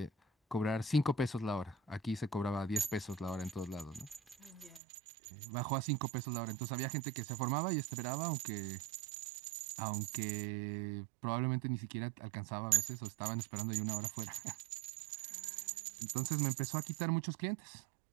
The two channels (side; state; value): left; drops out; at 4.8 s